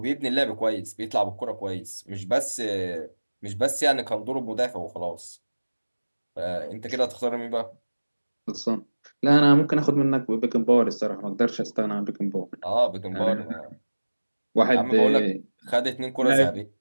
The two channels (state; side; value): inverted; both; correlation -1.00